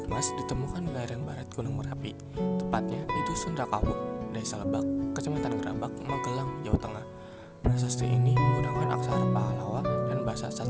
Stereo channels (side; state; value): both; identical; correlation 1.00